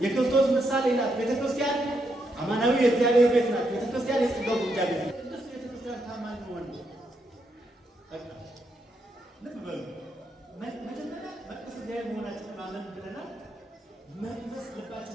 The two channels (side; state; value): both; normal; correlation 0.79